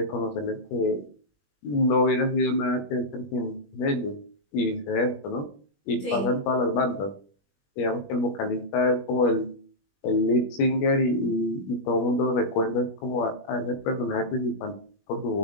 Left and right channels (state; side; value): late; right; 21 ms